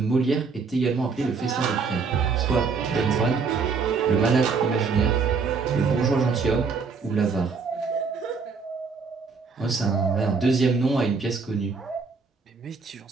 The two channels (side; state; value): left; quieter; 5.0 dB